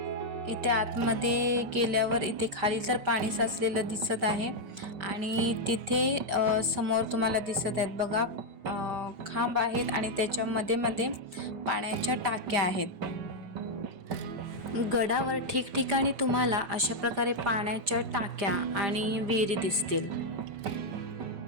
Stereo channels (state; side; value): late; left; 5.0 ms